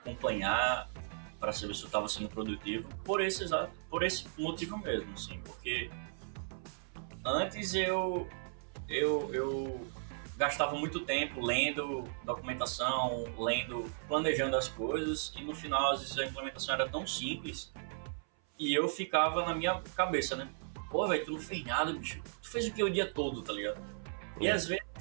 para saber se eu estava sendo produtivo por esse motivo mesmo, assim, porque antes eu gastava muito tempo lendo documentação, planejando as coisas, e no final às vezes a implementação era tão simples e eu ficava na minha cabeça, né? Pô, velho, tu não fez nada, bicho. Tu fez o que o dia todo, tá ligado? E às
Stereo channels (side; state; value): left; silent; 54 dB below the other